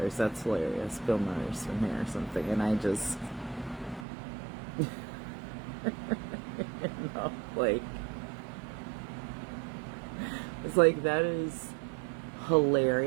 That's hilarious. Bill Murray's from here or something. And I just, you know, like, it's like, that is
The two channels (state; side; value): drops out; left; at 4.0 s